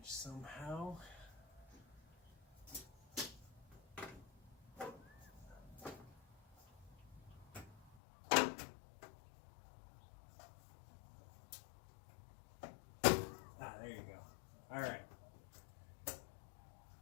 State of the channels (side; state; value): right; drops out; at 8.0 s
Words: somehow. There you go. All right.